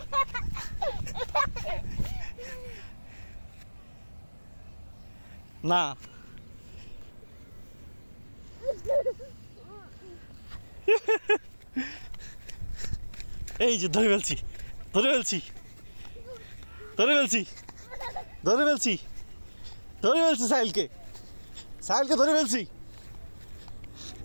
না, এই যে ধরে ফেলছি, ধরে ফেলছি, ধরে ফেলছি, ধরে ফেলছি, ধরে ফেলছি সাহিলকে, সাহিলকে ধরে ফেলছি।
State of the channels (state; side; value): inverted; both; correlation -1.00